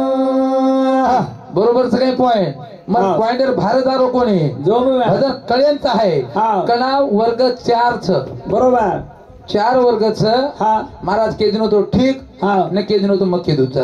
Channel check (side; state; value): both; identical; correlation 1.00